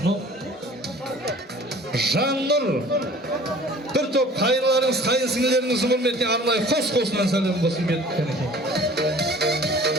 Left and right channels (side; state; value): both; normal; correlation 0.48